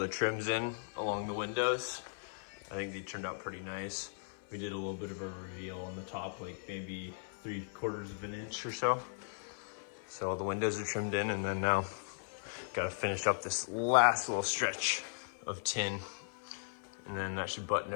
trims in along the windows. I think they turned out pretty nice. We did a little bit of a reveal on the top, like maybe 3/4 of an inch or so. So all the windows are trimmed in, and then now gotta finish up this last little stretch of tin, and then that should button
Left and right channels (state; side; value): silent; right; 53 dB below the other